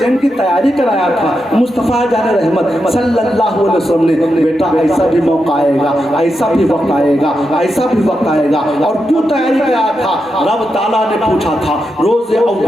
کی تیاری کرایا تھا مصطفیٰ جان رحمت صلی اللہ علیہ وسلم نے، بیٹا ایسا بھی موقع آئے گا، ایسا بھی وقت آئے گا، ایسا بھی وقت آئے گا۔ اور کیوں تیاری کرایا تھا؟ رب تعالیٰ نے پوچھا تھا روز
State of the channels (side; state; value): both; normal; correlation 0.86